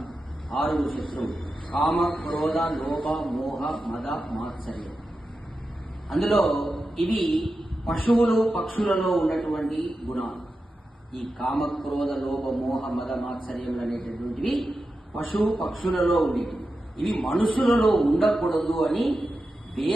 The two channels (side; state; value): both; normal; correlation 0.91